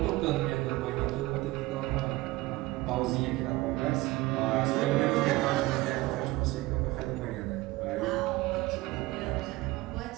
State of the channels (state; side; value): quieter; left; 19.4 dB